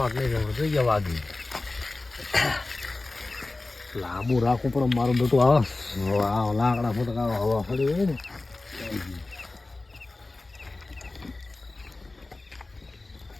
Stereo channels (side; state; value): right; quieter; 3.2 dB